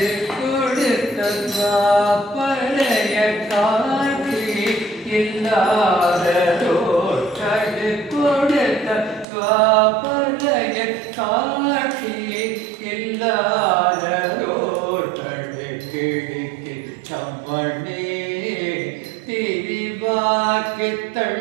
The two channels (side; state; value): left; drops out; at 9.2 s